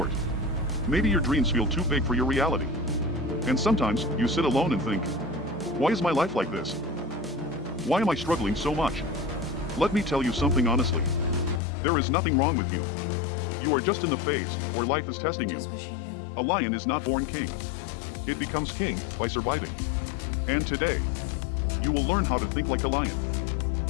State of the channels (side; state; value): right; drops out; at 11.6 s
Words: Maybe your dreams feel too big for your reality. And sometimes you sit alone and think, why is my life like this? Why am I struggling so much? Let me tell you something honestly. There is nothing wrong with you. You are just in the phase where life is testing you. A lion is not born king. It becomes king by surviving. And today, you will learn how to think like a lion.